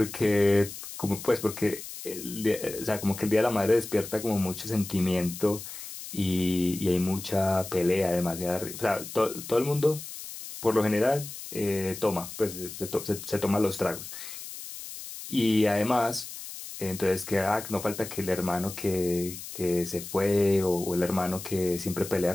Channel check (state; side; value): noise; left; hiss, 11 dB below the sound